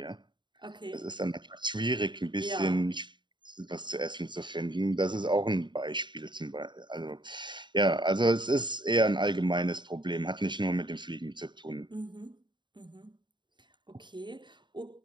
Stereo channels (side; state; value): left; late; 0.22 ms